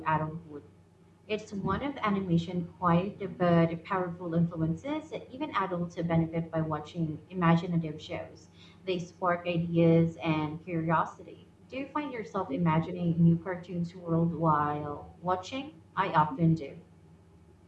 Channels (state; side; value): identical; both; correlation 1.00